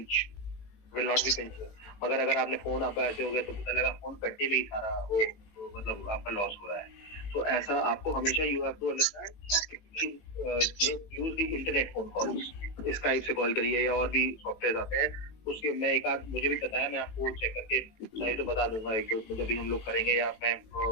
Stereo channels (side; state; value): right; late; 18 ms